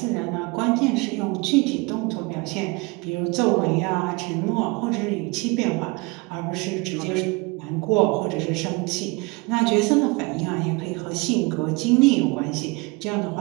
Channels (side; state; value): left; quieter; 26.6 dB